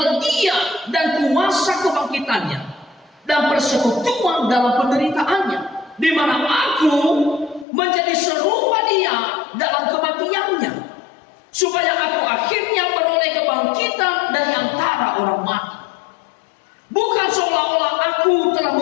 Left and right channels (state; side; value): drops out; right; at 7.7 s